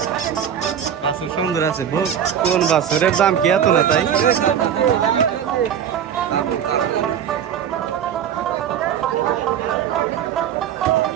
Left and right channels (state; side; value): quieter; left; 8.9 dB